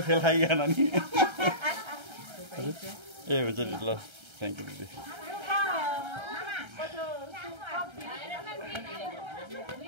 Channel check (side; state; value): left; late; 1.3 ms